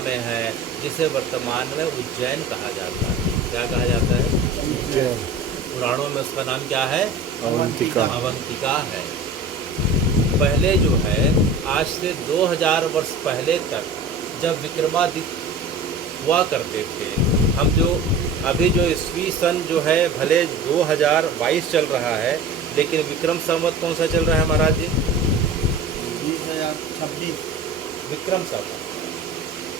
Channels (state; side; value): quieter; left; 3.4 dB